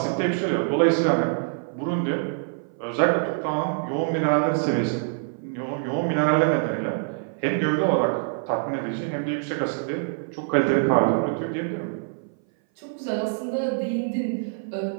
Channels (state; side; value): silent; left; 59 dB below the other